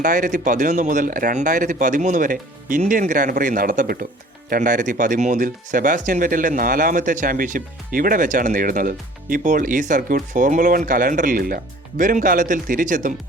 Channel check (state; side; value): normal; both; correlation 0.50